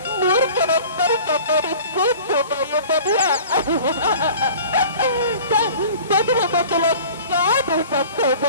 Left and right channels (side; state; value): both; inverted; correlation -0.44